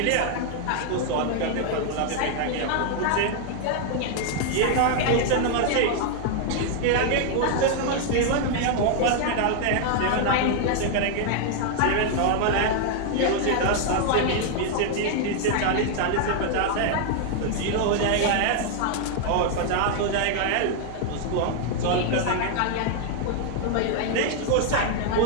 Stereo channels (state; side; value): different; both; correlation 0.00